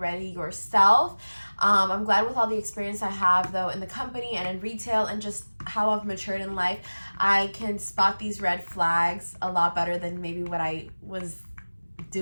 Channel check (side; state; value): both; inverted; correlation -1.00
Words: yourself. I'm glad with all the experience I have though in the company and in retail, and just how I've matured in life, I can spot these red flags a lot better than maybe what I was